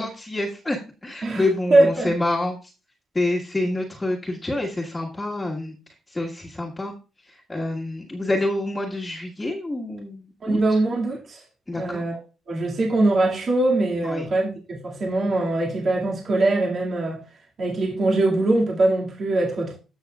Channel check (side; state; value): both; normal; correlation 0.90